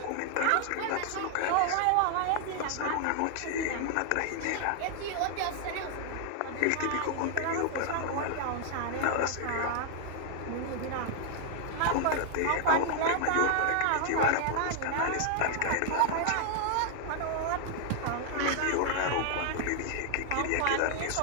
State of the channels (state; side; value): different; both; correlation 0.00